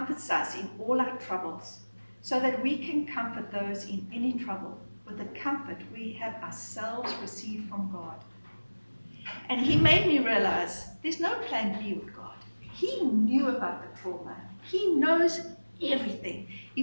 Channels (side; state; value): both; inverted; correlation -1.00